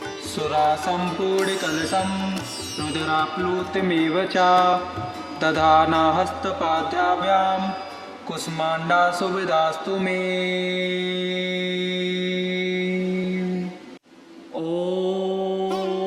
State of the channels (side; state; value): both; identical; correlation 1.00